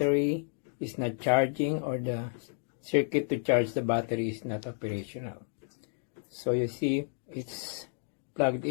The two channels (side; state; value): right; silent; digital silence